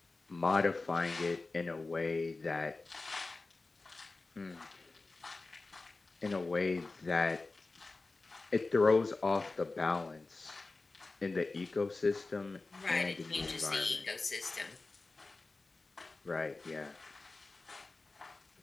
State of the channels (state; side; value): quieter; right; 3.5 dB